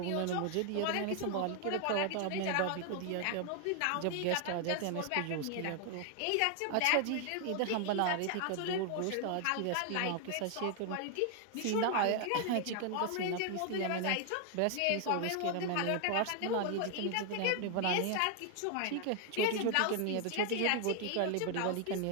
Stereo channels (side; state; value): both; different; correlation 0.00